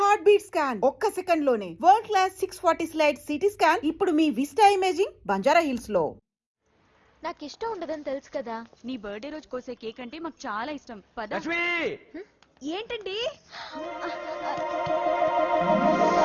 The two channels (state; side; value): identical; both; correlation 1.00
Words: Heart beat scan ఒక్క second లోనే world class 640 slide CT scan ఇప్పుడు మీ విస్టా ఇమేజింగ్ బంజారా హిల్స్ లో. నాకు ఇష్టం ఉండదని తెలుసు కదా. నీ బర్త్డే రోజు కోసే కేక్ అంటే మాకు చాలా ఇష్టం. పద. ఏంటండి?